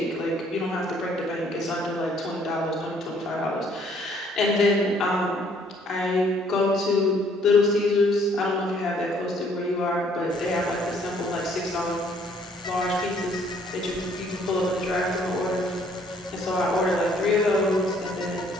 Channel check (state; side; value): normal; both; correlation 0.63